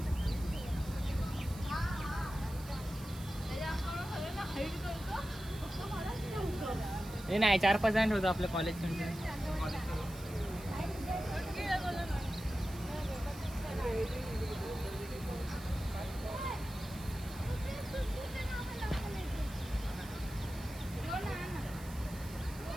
हे नाही 4-5 जण होतं आपल्या कॉलेज.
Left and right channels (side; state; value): right; noise; hiss, 17 dB below the sound